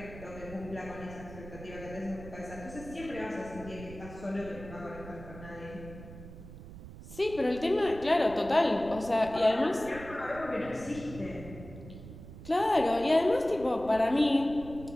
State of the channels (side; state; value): right; noise; rumble, 14 dB below the sound